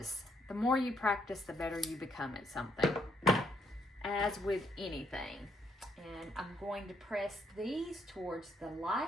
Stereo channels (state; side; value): normal; both; correlation 0.73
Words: The more you practice, the better you become at something. As with anything. And I'm going to press these towards the